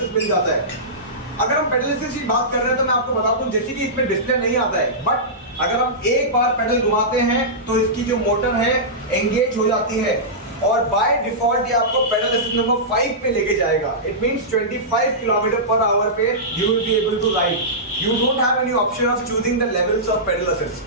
मिल जाता है. अगर हम पेडल असिस्ट की बात कर रहे हैं तो मैं आपको बता दूं जैसे कि इसमें डिस्प्ले नहीं आता है, बट अगर हम एक बार पेडल घुमाते हैं तो इसकी जो मोटर है एंगेज हो जाती है और बाय डिफॉल्ट ये आपको पेडल असिस्ट नंबर 5 पे लेके जाएगा. It means 25 kilometre per hour पे you will be able to ride. You don't have any option of choosing the levels of pedal assist.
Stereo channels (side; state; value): both; normal; correlation -0.16